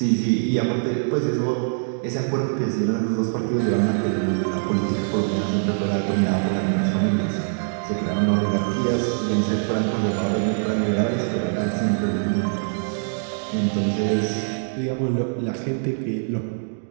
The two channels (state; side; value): silent; left; digital silence